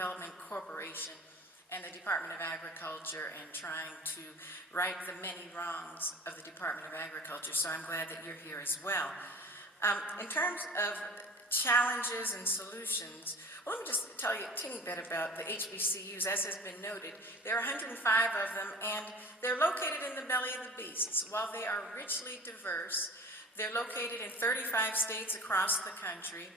Corporation and the Department of Agriculture and trying to right the many wrongs of the Department of Agriculture. So I'm glad that you're here as well. In terms of challenges and solutions, well, let me just tell you a teeny bit about the HBCUs. As has been noted, there are 105 of them, and they're located in the belly of the beasts. While they are richly diverse, they're located in 35 states across the country,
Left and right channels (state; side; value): normal; both; correlation 0.40